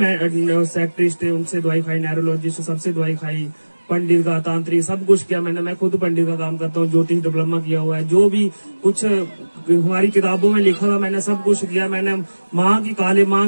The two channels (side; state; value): both; inverted; correlation -1.00